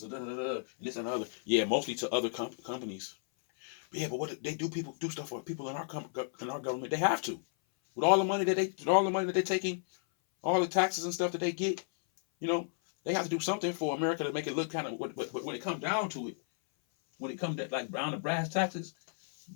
and this and the other. Yeah, mostly to other companies. But yeah, but what they do, people do stuff for people in our government. They have to, with all the money that they're taking, all the taxes and stuff that they get. They have to do something for America to make it look kind of. But when it comes down to it, when it comes to like down to brass taxes,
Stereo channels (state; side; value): silent; right; 56 dB below the other